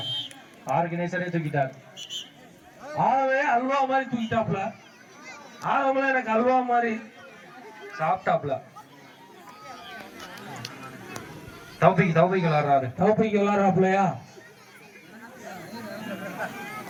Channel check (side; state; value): both; identical; correlation 1.00